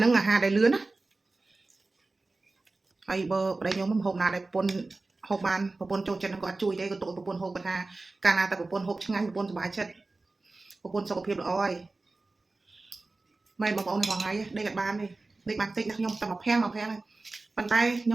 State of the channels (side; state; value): left; quieter; 3.3 dB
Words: នឹងអាហារដែលលឿនណាហើយបើប្តីខ្ញុំមិនហូបណាដែលប្រពន្ធហូបបានប្រពន្ធចូលចិត្តនឹងគាត់ជួយទេក៏ទុកប្រពន្ធហូបគាត់ថាកាលណាតែប្រពន្ធហូបឆ្ងាញ់ប្រពន្ធសុបាយចិត្តប្រពន្ធសុខភាពល្អហើយមិនបងប្អូនថ្ងៃដេកអត់បានទេដេកបានតិចណាខ្ញុំតែមកភាំងហើយប៉ុន្តែខ្ញ